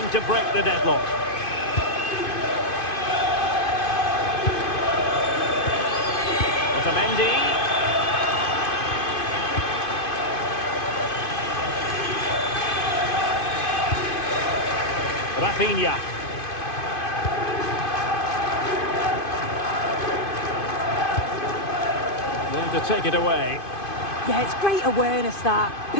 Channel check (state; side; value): late; right; 2.5 ms